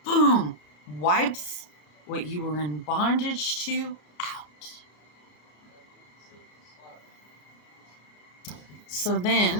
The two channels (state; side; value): late; right; 34 ms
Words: Boom! Wipes what you were in bondage to out. So